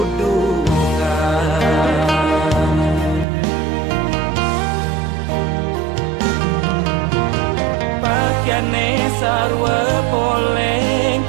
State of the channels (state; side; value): drops out; left; at 3.2 s